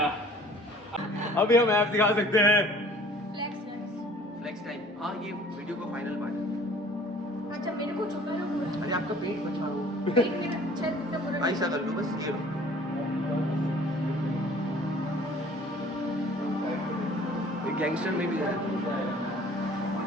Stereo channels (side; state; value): both; normal; correlation 0.51